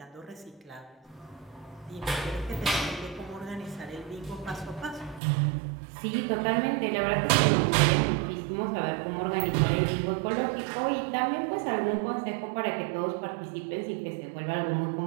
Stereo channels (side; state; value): left; drops out; at 5.2 s